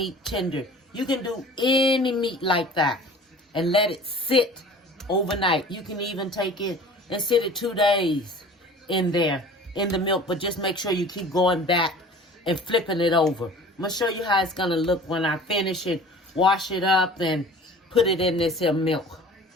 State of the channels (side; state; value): both; normal; correlation 0.44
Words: tender. You can do any meat like that and let it sit overnight. You can even take it and sit it 2 days in there, in the milk, but just make sure you keep going back and flipping it over. I'm going to show you how it's going to look when I finish it, wash it up, and put it in this here milk.